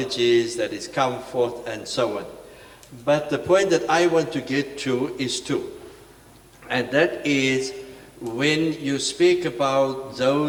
that is come forth and so on. But the point that I want to get to is two. And that is when you speak about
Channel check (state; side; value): identical; both; correlation 1.00